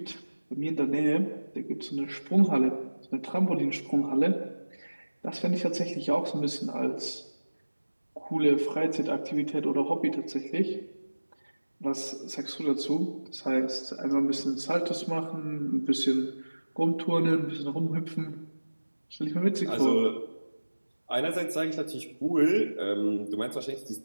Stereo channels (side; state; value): both; inverted; correlation -1.00